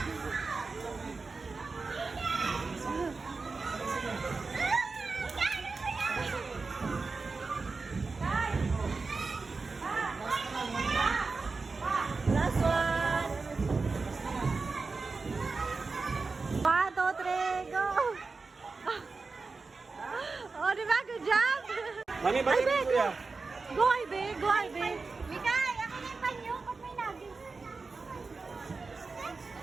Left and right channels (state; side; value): quieter; left; 4.2 dB